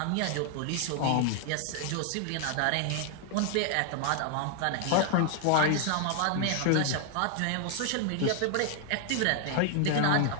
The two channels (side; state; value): both; different; correlation 0.00